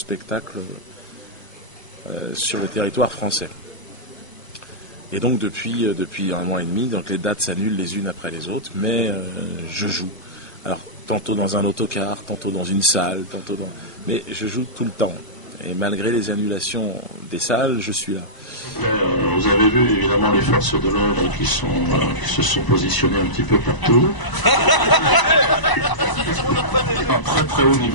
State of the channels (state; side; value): late; right; 1.1 ms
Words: sur le territoire français. Et donc depuis un mois et demi, donc les dates s'annulent les unes après les autres, mais je joue. Alors tantôt dans un autocar, tantôt dans une salle, mais je joue tout le temps. Et malgré les annulations des salles, je suis là. Vous avez vu évidemment les forces de l'ordre qui se sont positionnées un petit peu partout. Très haut